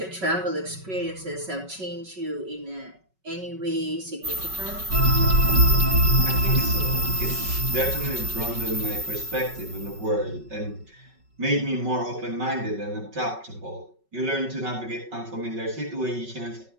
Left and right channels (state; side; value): late; left; 5.3 ms